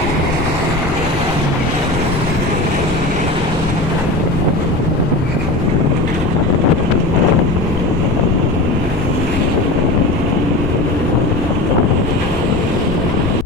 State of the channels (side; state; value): left; noise; rumble, 7 dB below the sound